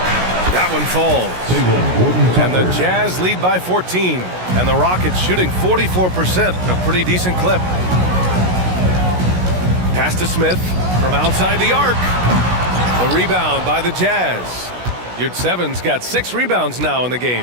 That one falls. And the Jazz lead by 14. And the Rockets shooting 44%, a pretty decent clip. Pass to Smith from outside the arc. The rebound by the Jazz. Yurtseven's got 6 rebounds now in the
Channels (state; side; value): late; left; 16 ms